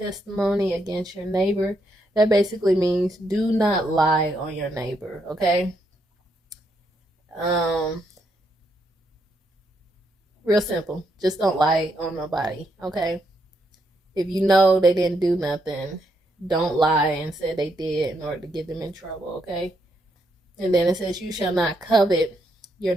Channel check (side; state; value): both; normal; correlation 0.78